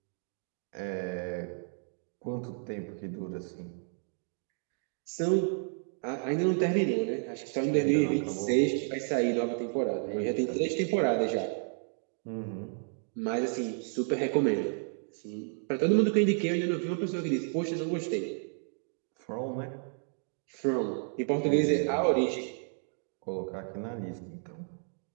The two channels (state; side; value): silent; left; 57 dB below the other